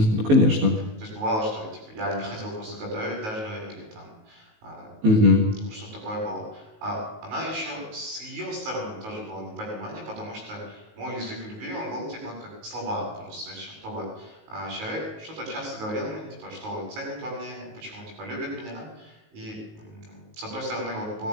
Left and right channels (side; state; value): left; late; 19 ms